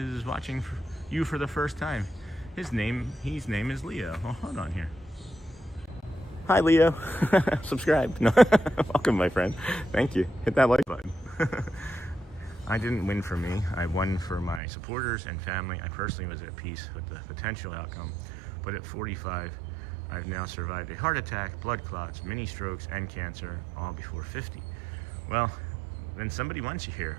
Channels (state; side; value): drops out; left; at 14.6 s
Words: watching you for the first time. His name is Leo. Oh, hold on here. Hi, Leo. Subscribe. No. Welcome, my friend. Thank you. Hit that like button. I didn't win for me. I won for my supporters and family. I personally was at peace with the potential outcome, but at 45, I've now survived a heart attack, blood clots, mini strokes, and cancer, all before 50. Well, then somebody wants you here,